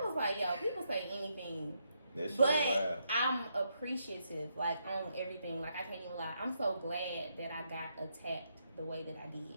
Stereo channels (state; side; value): inverted; both; correlation -0.79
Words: was like, yo, people say anything. But I'm appreciative, like, on everything. Like, I can't even lie. I'm so glad that I got attacked the way that I